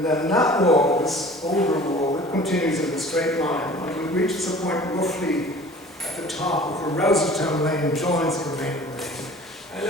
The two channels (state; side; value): normal; both; correlation 0.45